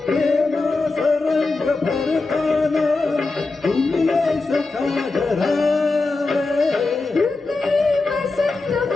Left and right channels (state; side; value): quieter; right; 3.6 dB